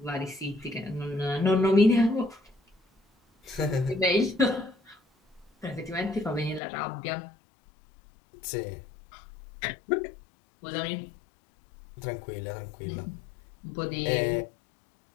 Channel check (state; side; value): drops out; right; at 6.6 s